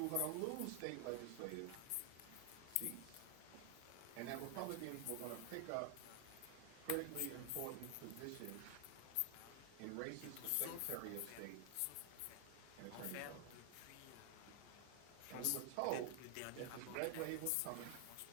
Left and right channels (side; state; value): both; different; correlation 0.00